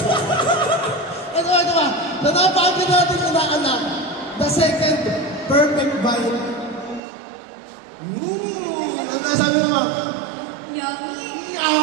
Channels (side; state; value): left; drops out; at 7.0 s